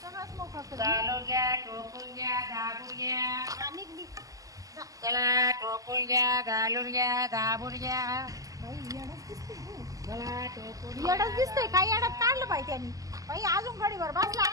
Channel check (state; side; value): late; left; 0.17 ms